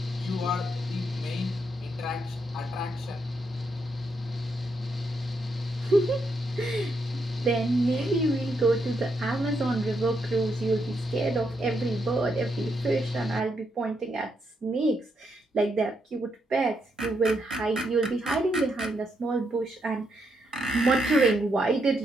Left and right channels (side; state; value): both; normal; correlation 0.79